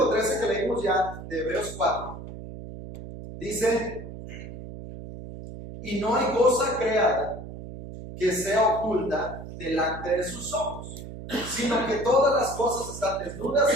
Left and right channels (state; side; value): noise; right; hum, 11 dB below the sound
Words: 13 que leímos ya de Hebreos 4, dice: y no hay cosa creada que sea oculta delante de sus ojos, sino que todas las cosas están desnudas